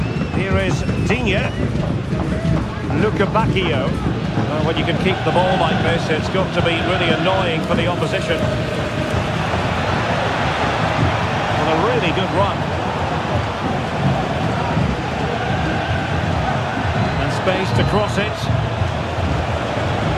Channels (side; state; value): both; identical; correlation 1.00